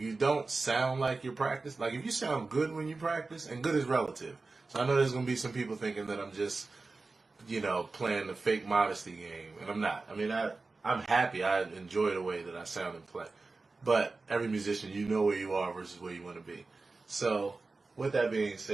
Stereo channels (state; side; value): quieter; left; 3.7 dB